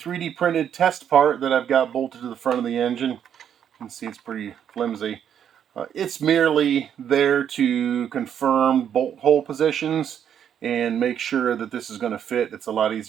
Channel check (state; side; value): quieter; left; 9.0 dB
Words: printed test part that I've got bolted to the front of the engine. You can see it's pretty flimsy. It's merely there to confirm bolt hole positions and make sure that this is going to fit. It's a lot